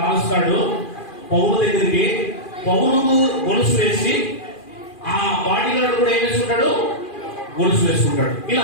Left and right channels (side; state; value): right; late; 2.4 ms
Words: పౌలు దగ్గరికి. పౌలుకు గొలుసు వేసి ఆ బాడీ గార్డు కూడా ఏం వేసుకుంటాడు? గొలుసు వేసుకుంటాడు.